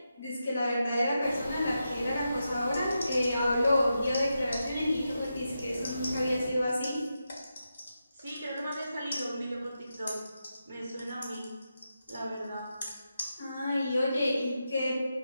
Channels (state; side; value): inverted; both; correlation -0.87